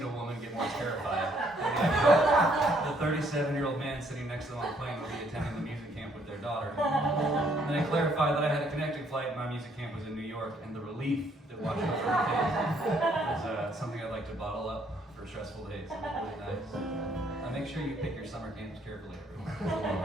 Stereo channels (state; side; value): normal; both; correlation 0.67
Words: a woman get more terrified. The 37-year-old man sitting next to them on the plane will be attending the music camp with their daughter. And then I clarified that I had a connecting flight and my music camp was in New York, and the relief that washed over her face was something I'd like to bottle up for stressful days. It was really nice. Make sure you pick your summer camps carefully, everyone.